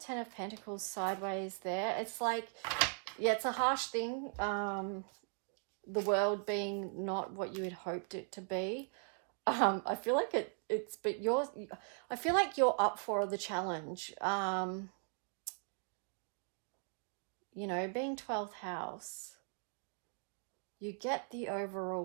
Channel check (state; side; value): silent; left; 52 dB below the other